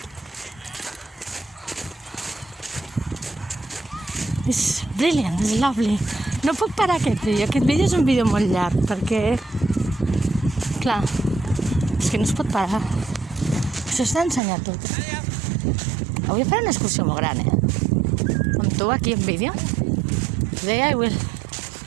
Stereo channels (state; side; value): drops out; left; at 14.4 s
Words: It's brilliant, it's lovely. No puc parar aquest vídeo és un vídeo molt llarg, perquè, clar, és que no es pot parar. Això s'ha d'ensenyar tot. Avui faré una excursió molt gran, amb tu aquí en vídeo. Today I will